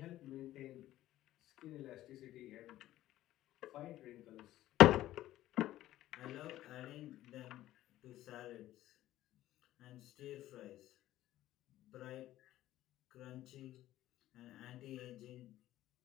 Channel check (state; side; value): quieter; right; 14.4 dB